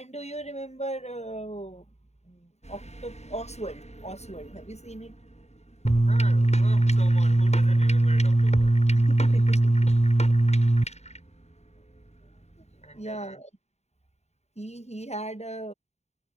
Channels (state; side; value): late; right; 0.32 ms